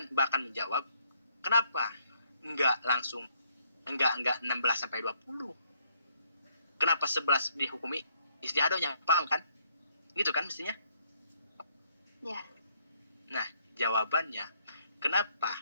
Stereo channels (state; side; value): inverted; both; correlation -0.69